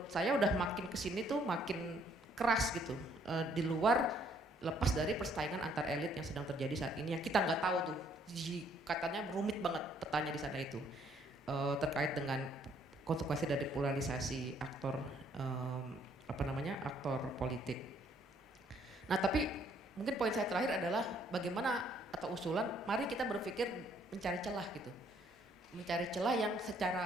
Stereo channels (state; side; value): normal; both; correlation 0.65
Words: saya udah makin kesini tuh makin keras gitu, di luar lepas dari persaingan antar elit yang sedang terjadi saat ini yang kita nggak tahu tuh, katanya rumit banget petanya di sana itu, terkait dengan konsekuensi dari polarisasi aktor aktor politik. Nah tapi mungkin poin saya terakhir adalah bagaimana atau usulan, mari kita berpikir mencari celah gitu, mencari celah yang